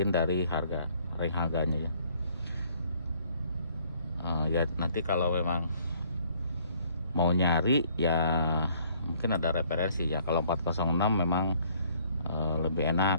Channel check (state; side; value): inverted; both; correlation -0.62